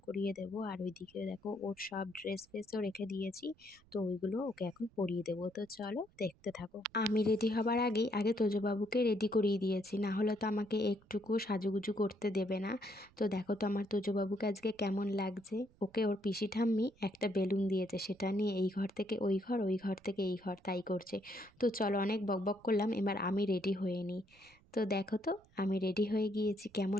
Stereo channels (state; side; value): noise; right; rumble, 29 dB below the sound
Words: করিয়ে দেবো। আর ওইদিকে দেখো, ওর সব ড্রেস ফ্রেসও রেখে দিয়েছি, তো ওইগুলো ওকে এখন পরিয়ে দেবো। তো চলো দেখতে থাকো। আমি রেডি হবার আগেই আগে তোজবাবুকে রেডি করিয়ে দিয়েছি, না হলে তো আমাকে একটুকু সাজুগুজু করতে দেবে না। তো দেখো তো আমার তোজবাবুকে আজকে কেমন লাগছে। ওকে ওর পিসি ঠাম্মি একটা বেলুন দিয়েছে, সেটা নিয়ে এই ঘর থেকে ওই ঘর, ওই ঘর থেকে এই ঘর, তাই করছে। তো চলো, অনেক বকবক করলাম, এবার আমি রেডি হয়ে নিই। তো দেখো তো, আমি রেডি হয়ে গিয়েছি,